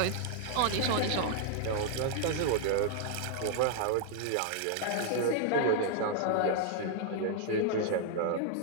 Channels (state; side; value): different; both; correlation 0.00